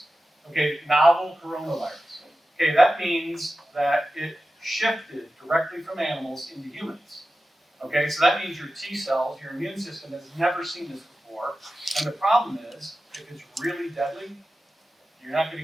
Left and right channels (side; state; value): both; normal; correlation 0.93